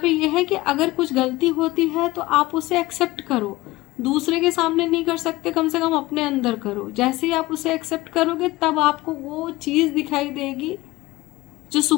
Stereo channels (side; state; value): right; quieter; 19.3 dB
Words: ये है कि अगर कुछ गलती होती है तो आप उसे एक्सेप्ट करो, दूसरे के सामने नहीं कर सकते, कम से कम अपने अंदर करो। जैसे ही आप उसे एक्सेप्ट करोगे तब आपको वो चीज़ दिखाई देगी जो